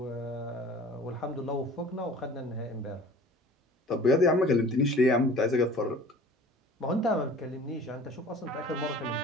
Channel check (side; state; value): both; normal; correlation 0.45